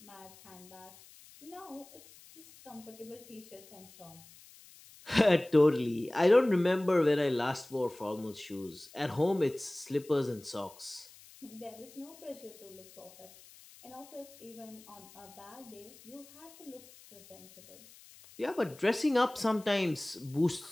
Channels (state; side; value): noise; left; hiss, 22 dB below the sound